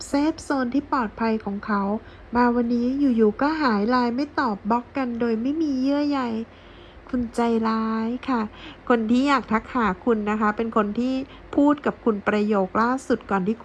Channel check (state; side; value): identical; both; correlation 1.00